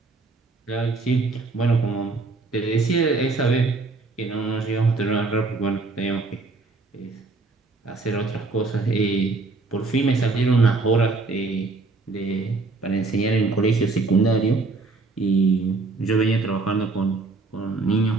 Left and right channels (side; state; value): left; quieter; 3.7 dB